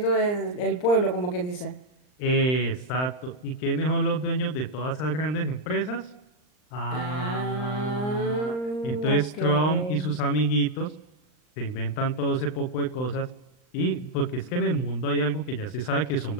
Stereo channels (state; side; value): late; right; 39 ms